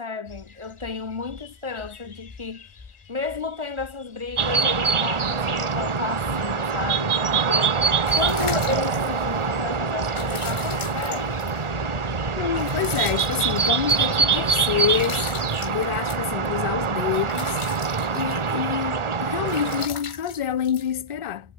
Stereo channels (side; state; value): left; late; 1.4 ms